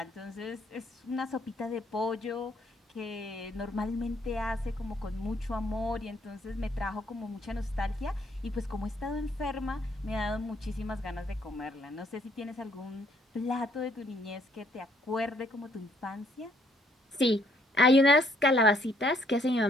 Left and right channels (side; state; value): both; normal; correlation 0.67